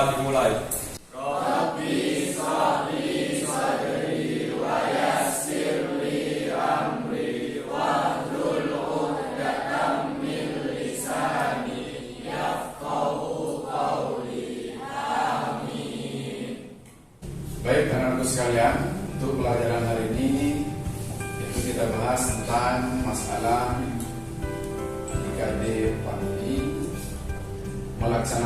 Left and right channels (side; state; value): both; identical; correlation 1.00